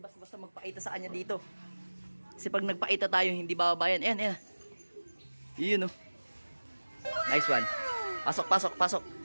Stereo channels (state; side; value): inverted; both; correlation -1.00